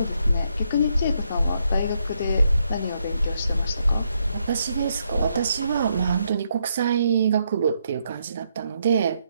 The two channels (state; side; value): inverted; both; correlation -0.77